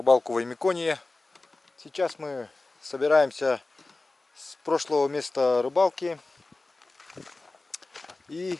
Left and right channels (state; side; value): quieter; right; 3.2 dB